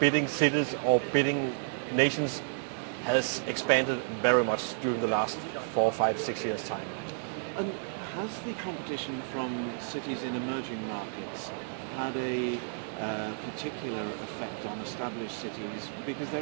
cities or bidding nations has expanded very much during the last 4, 5, 6 years' time. And has the competition from cities in emerging markets had a particular effect on established cities? Because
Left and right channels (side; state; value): left; silent; 57 dB below the other